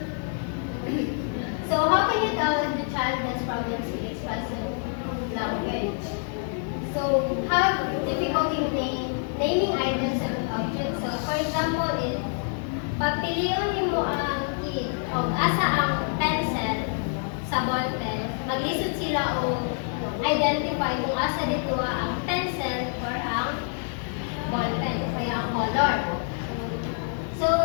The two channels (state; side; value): silent; right; 56 dB below the other